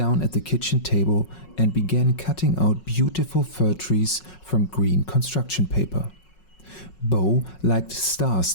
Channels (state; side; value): late; right; 5.4 ms